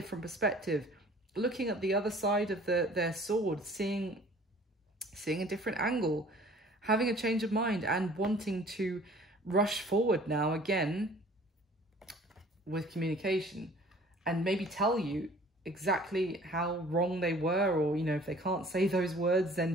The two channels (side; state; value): both; normal; correlation 0.51